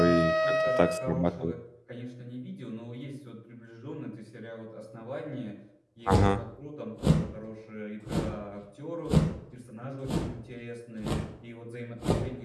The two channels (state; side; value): identical; both; correlation 1.00